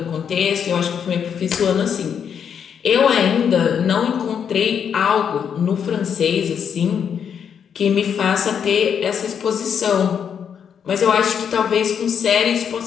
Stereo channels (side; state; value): right; quieter; 7.7 dB